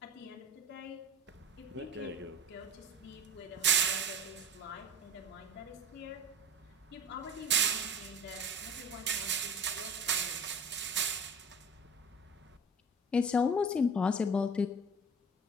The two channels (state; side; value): normal; both; correlation 0.38